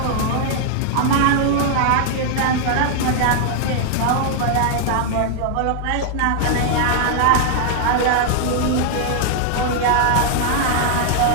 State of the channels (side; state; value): both; different; correlation 0.00